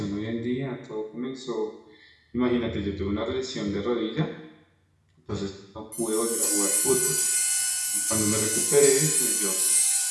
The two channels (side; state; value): both; identical; correlation 1.00